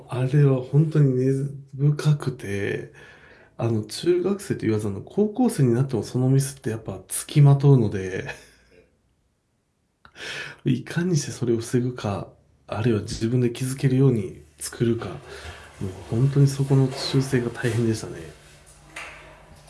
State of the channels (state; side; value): identical; both; correlation 1.00